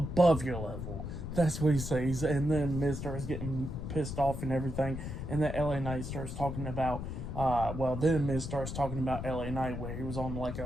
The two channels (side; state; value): left; noise; rumble, 6 dB below the sound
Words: your level. That's what he says. And then Miz starts getting pissed off and everything, and then LA Knight starts talking about then Miz starts talking about LA Knight, where he was on like